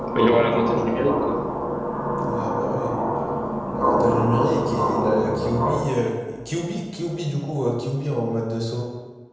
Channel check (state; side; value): identical; both; correlation 1.00